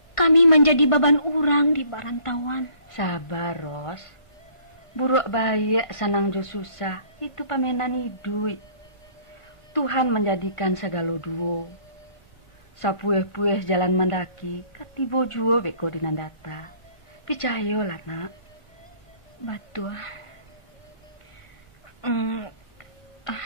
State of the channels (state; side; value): late; right; 1.5 ms